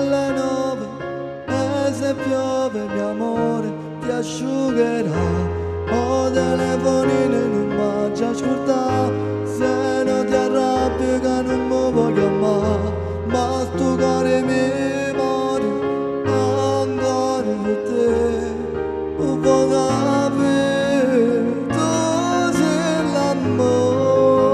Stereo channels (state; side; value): identical; both; correlation 1.00